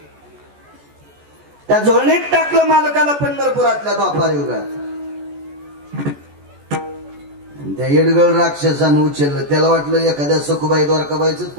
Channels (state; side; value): late; left; 14 ms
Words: त्या झोळणीत टाकलं मालकाला पंढरपुरातल्या द्वापार युगात. त्या येडगळ राक्षसानं उचललं. त्याला वाटलं एखाद्या सखुबाई द्वारकाबाईच